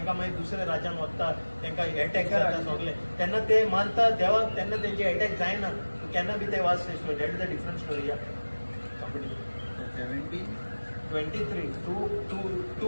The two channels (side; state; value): both; inverted; correlation -1.00